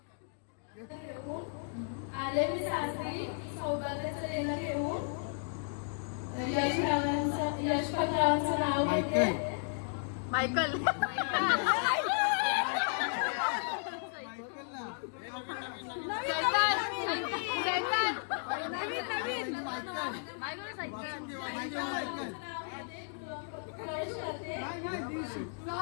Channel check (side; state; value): right; silent; digital silence